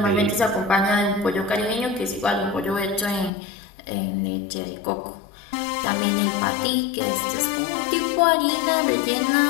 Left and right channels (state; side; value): drops out; right; at 3.3 s